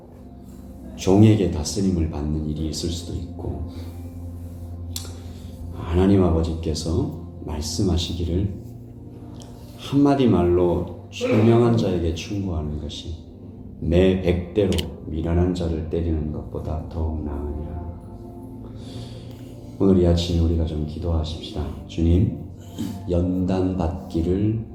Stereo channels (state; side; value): identical; both; correlation 1.00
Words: 종에게 다스림을 받는 일이 있을 수도 있고, 하나님 아버지께서 말씀하시기를 한마디 말로 총명한 자에게 충고하는 것이 매 100대로 미련한 자를 때리는 것보다 더욱 나으니라. 오늘 이 아침에 우리가 좀 기도하십시다. 주님, 연단 받기를